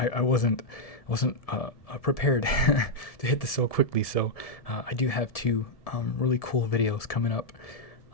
wasn't prepared to hit this so quickly. So I do have two really cool videos coming up.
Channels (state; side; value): late; right; 1.7 ms